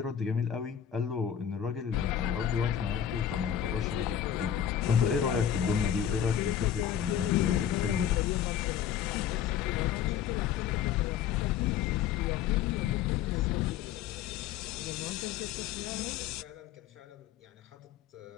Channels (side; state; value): right; quieter; 9.5 dB